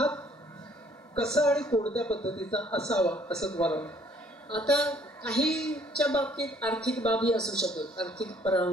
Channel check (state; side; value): normal; both; correlation 0.61